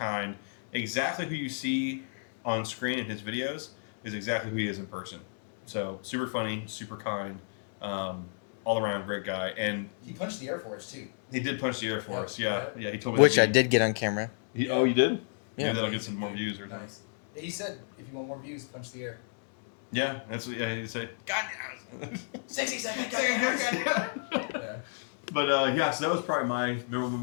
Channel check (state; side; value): silent; right; digital silence